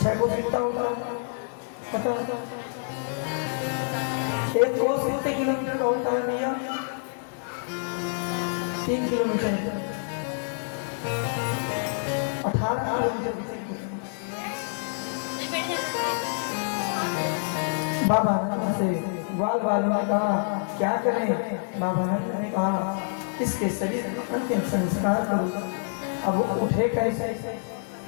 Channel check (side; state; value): right; silent; digital silence